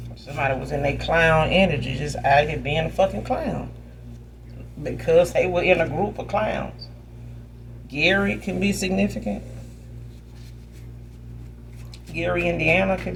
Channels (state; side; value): identical; both; correlation 1.00